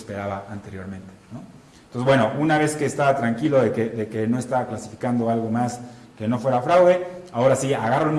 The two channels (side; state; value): both; identical; correlation 1.00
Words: anteriormente, ¿no? Entonces, bueno, una vez que estaba tranquilo de que no estaba clasificando algo más que no fuera fraude, ahora sí, agarro el